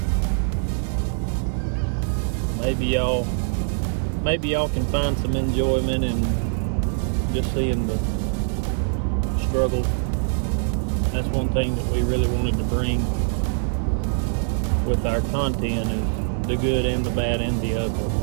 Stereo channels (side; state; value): left; silent; 62 dB below the other